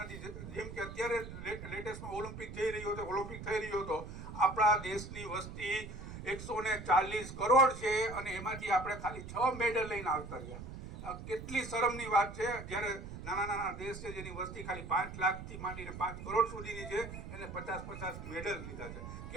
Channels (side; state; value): right; noise; rumble, 10 dB below the sound